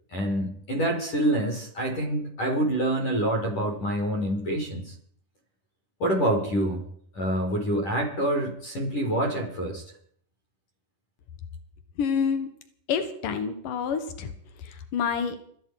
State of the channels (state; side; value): late; right; 10 ms